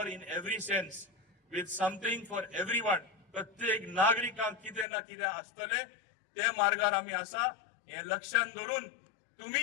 in every sense, with something for everyone. प्रत्येक नागरिकांक कितें ना कितें आसतलें. ते मार्गार आमी आसा. हे लक्षांत दवरून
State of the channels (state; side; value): drops out; right; at 4.9 s